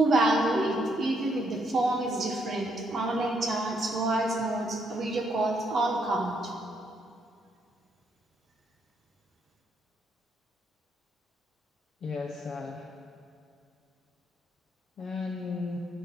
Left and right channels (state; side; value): normal; both; correlation 0.74